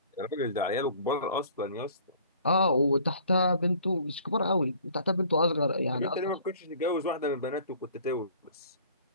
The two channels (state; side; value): inverted; both; correlation -0.53